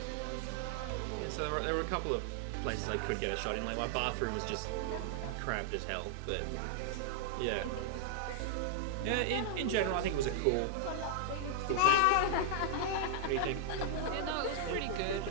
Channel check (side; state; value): both; different; correlation -0.01